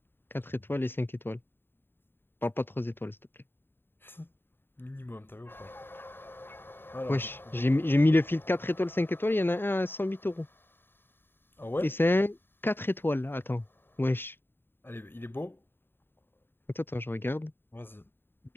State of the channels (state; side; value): late; right; 0.10 ms